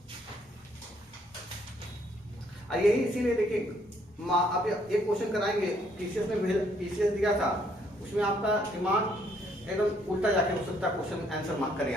और यही इसीलिए देखिए अब एक क्वेश्चन कराएंगे, पीसीएस में पीसीएस दिया था, उसमें आपका दिमाग एकदम उल्टा जाके हो सकता है, क्वेश्चन आंसर मार्क करें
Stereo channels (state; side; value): normal; both; correlation 0.68